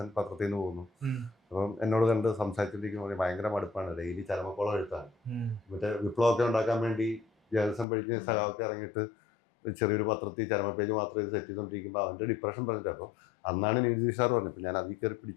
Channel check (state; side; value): drops out; right; at 7.9 s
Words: പത്രത്തിൽ നിന്ന് പോകുന്നു. അപ്പം എന്നോട് കണ്ട് സംസാരിച്ചിരിക്കുമ്പോൾ ഭയങ്കര മടുപ്പാണ്, ഡെയിലി ചരമക്കോളം എഴുത്താണ്. മറ്റേ വിപ്ലവമൊക്കെ ഉണ്ടാക്കാൻ വേണ്ടി ജേർണലിസം പഠിച്ച് സഹാവൊക്കെ ഇറങ്ങിയിട്ട് ചെറിയൊരു പത്രത്തിൽ ചരമ പേജ് മാത്രം ഇത് സെറ്റ് ചെയ്തുകൊണ്ടിരിക്കുമ്പോൾ അവൻ്റെ ഡിപ്രഷൻ പറഞ്ഞിട്ട്. അപ്പോൾ അന്നാണ് നിതീഷ് സാർ പറഞ്ഞത്, ഞാൻ അതിൽ കയറി